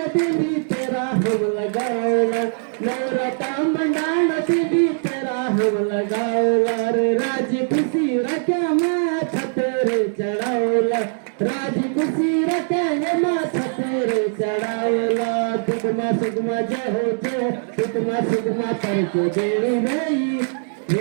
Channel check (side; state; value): left; silent; digital silence